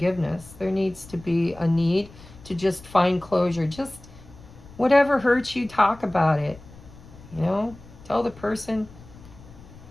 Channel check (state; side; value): noise; left; rumble, 20 dB below the sound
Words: There needs to be a need to just find closure. Just whatever hurts you, talk about it. You know, tell the person,